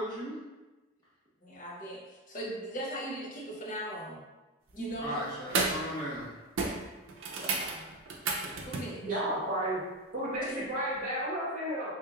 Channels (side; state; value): both; normal; correlation 0.11